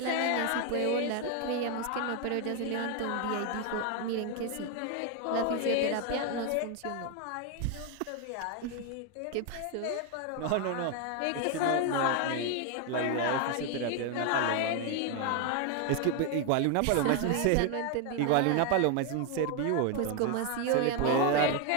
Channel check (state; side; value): different; both; correlation 0.01